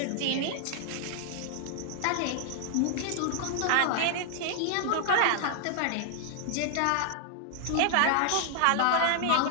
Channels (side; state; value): both; different; correlation 0.00